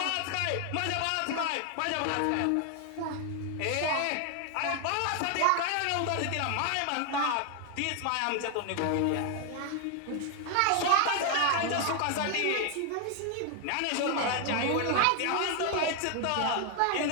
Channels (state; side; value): different; both; correlation 0.01